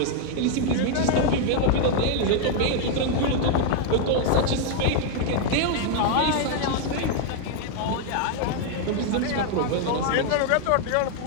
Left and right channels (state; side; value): different; both; correlation 0.00